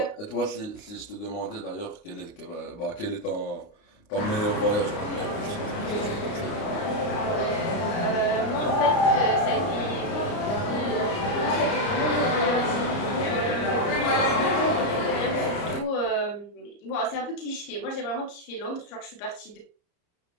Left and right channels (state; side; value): late; right; 29 ms